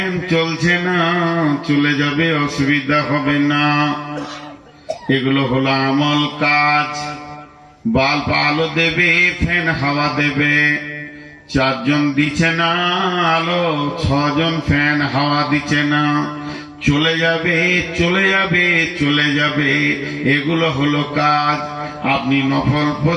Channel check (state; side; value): identical; both; correlation 1.00